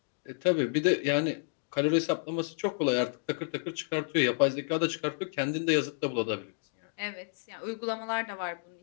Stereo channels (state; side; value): silent; right; digital silence